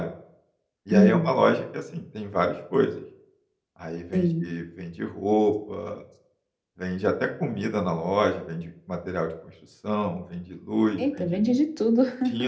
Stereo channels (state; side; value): identical; both; correlation 1.00